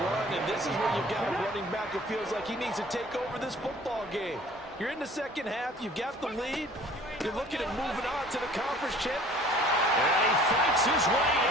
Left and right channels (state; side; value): normal; both; correlation 0.51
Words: run, and this is where you've got a running back who feels like he needs to take over this football game. You're in the second half. You've got the lead. You're looking at moving on to the conference chip. And he fights his way